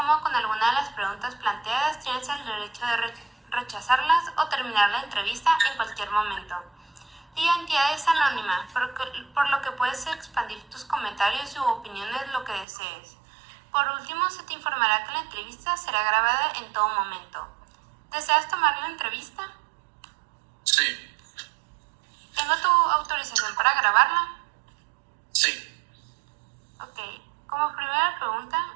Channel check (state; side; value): drops out; left; at 12.7 s